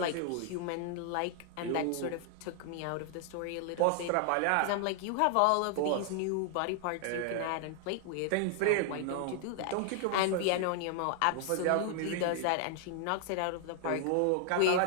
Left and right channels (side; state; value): both; different; correlation 0.00